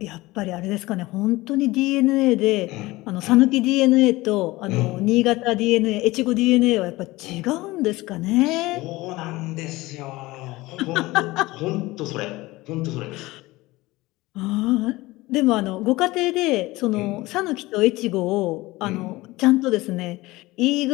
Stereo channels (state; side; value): quieter; right; 19.9 dB